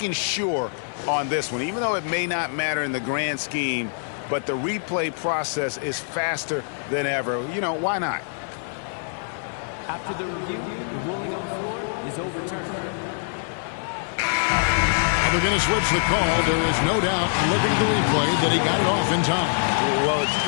sure on this one, even though it may not matter in the grand scheme, but the replay process is faster than ever. You know, why not? After the review, the ruling on the floor is overturned. They're going to switch the call. There is no doubt, looking at the replay, that he got it off in time. Well, it's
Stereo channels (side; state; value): right; silent; 59 dB below the other